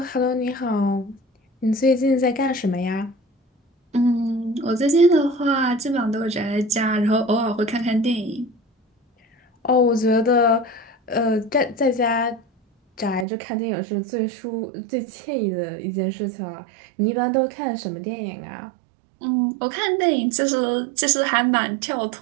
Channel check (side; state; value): left; drops out; at 13.2 s